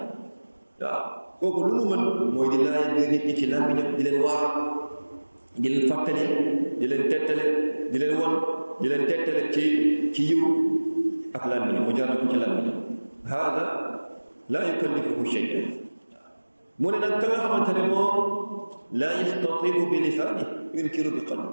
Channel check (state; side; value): inverted; both; correlation -1.00